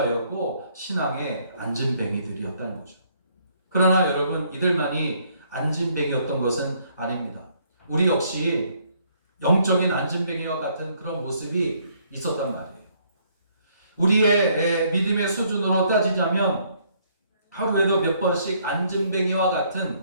신앙의 안진뱅이들이었다는 거죠. 그러나 여러분 이들만이 안진뱅이였던 것은 아닙니다. 우리 역시 영적인 안진뱅이와 같은 그런 모습이 있었단 말이에요. 우리의 믿음의 수준으로 따지자면 하루에도 몇 번씩 안진뱅이와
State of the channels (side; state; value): both; inverted; correlation -0.67